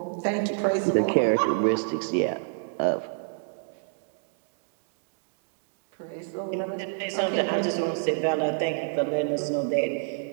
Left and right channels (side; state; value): left; silent; digital silence